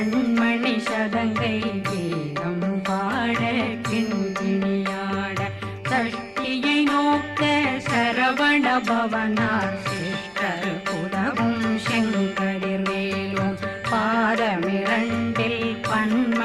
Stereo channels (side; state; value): both; identical; correlation 1.00